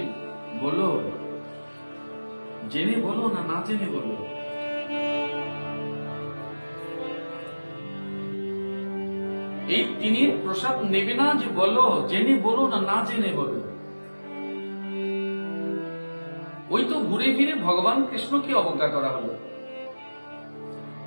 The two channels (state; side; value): inverted; both; correlation -1.00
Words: বলো, জেনে বলো না না জেনে বলো। এই তিনের প্রসাদ নেবে না যে বলো, জেনে বলো না না জেনে বলো। ওই তো ঘুরে ফিরে ভগবান কৃষ্ণকে অবজ্ঞা করা হলো।